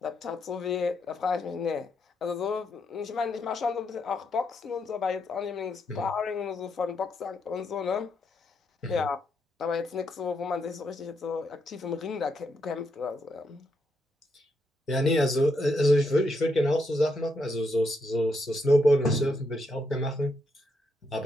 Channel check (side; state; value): both; normal; correlation 0.79